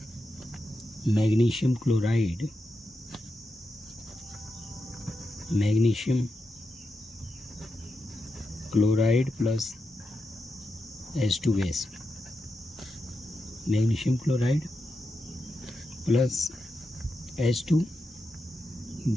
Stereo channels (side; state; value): both; normal; correlation 0.87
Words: magnesium chloride plus H2 gas. Magnesium chloride plus H2